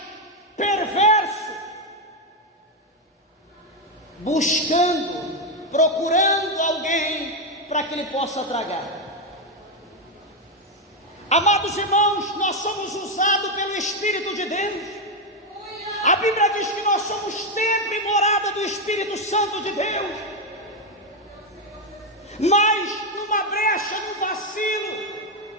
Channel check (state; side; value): normal; both; correlation 0.05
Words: perverso, buscando, procurando alguém para que ele possa tragar. Amados irmãos, nós somos usados pelo Espírito de Deus. A Bíblia diz que nós somos templo e morada do Espírito Santo de Deus. Mas numa brecha, num vacilo